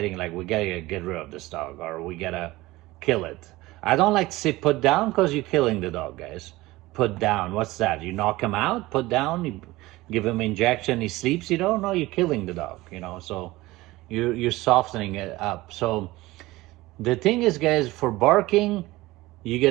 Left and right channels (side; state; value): left; quieter; 19.2 dB